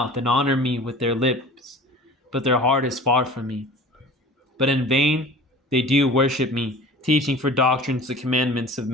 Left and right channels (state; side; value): normal; both; correlation 0.41